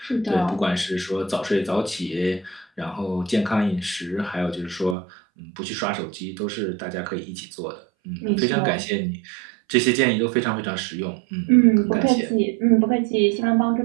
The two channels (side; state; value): left; drops out; at 5.0 s